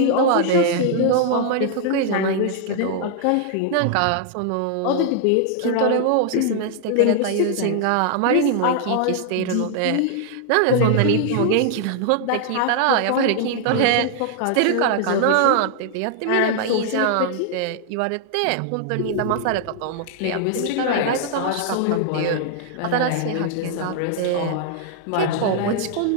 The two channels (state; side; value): different; both; correlation -0.01